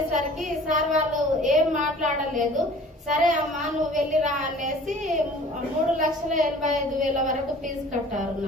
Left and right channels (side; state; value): both; normal; correlation 0.48